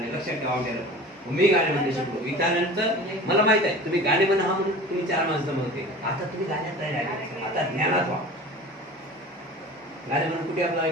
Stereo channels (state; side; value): normal; both; correlation 0.39